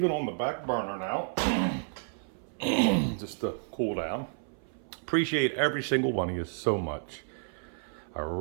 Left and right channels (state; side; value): silent; left; 57 dB below the other